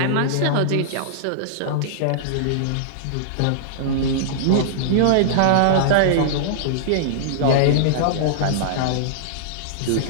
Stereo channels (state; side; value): different; both; correlation -0.02